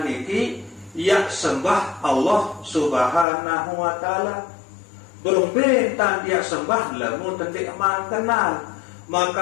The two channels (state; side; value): drops out; right; at 3.2 s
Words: niki yak sembah Allah Subhanahu wa taala. Berbentan dia sembah lamun tendik man kenal,